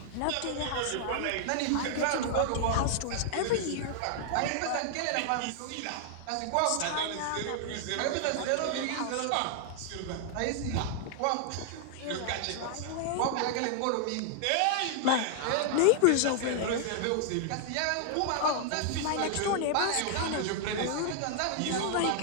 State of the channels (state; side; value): different; both; correlation 0.00